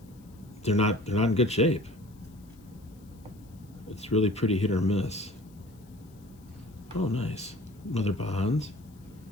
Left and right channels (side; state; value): left; noise; hiss, 30 dB below the sound